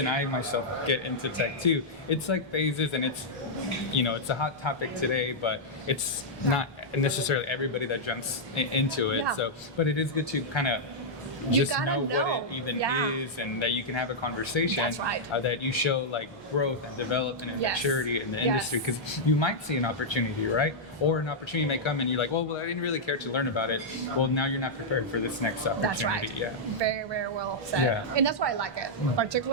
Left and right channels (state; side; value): normal; both; correlation -0.07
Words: I myself get into tech too, it's like phases, and it's it's a hot topic today, but it's not necessarily everybody that jumps into it. So, but it is good to kind of just gotta know what it even Yeah. is, and that you can have a conversation. That's right. That you show like growth and development and Yes. maturity in the Yes. industry, because you might see an opportunity, right? Or an opportunity may come and you're like, well, I didn't really care to learn about it. Well, now you're not prepared for this next opportunity. That's right. Yeah. Very, very well said. Yeah. And that's why I like it.